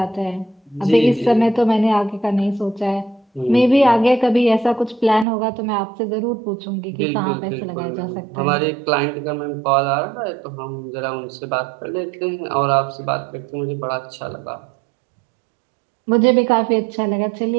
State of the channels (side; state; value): left; drops out; at 5.2 s